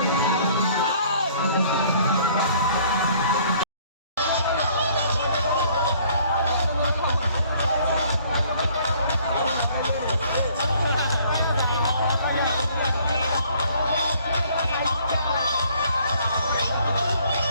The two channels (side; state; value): both; inverted; correlation -0.59